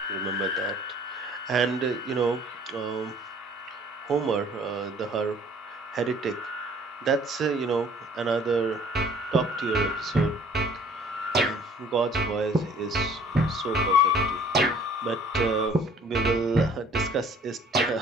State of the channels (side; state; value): both; normal; correlation 0.54